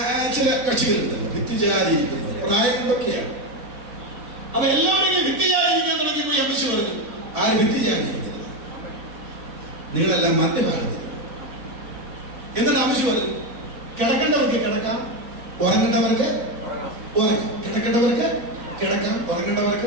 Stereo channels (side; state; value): left; late; 3.5 ms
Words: ചില കക്ഷികളുണ്ടല്ലോ, ഭിത്തിചാരിയിരിക്കുന്നത് പ്രായം എന്തൊക്കെയാണ്. അപ്പൊ എല്ലാവരും ഇങ്ങനെ ഭിത്തിചാരിയിരിക്കാൻ തുടങ്ങിയപ്പോ അമ്മച്ചി പറഞ്ഞു: ആര് ഭിത്തിചാരിയിരിക്കുന്നില്ല, നിങ്ങളെല്ലാം മധ്യഭാഗത്ത്. എന്നിട്ട് അമ്മച്ചി പറഞ്ഞു: കിടക്കേണ്ടവർക്ക് കിടക്കാം, ഉറങ്ങേണ്ടവർക്ക് ഉറങ്ങാം, കിടക്കേണ്ടവർക്ക് കിടക്കാം,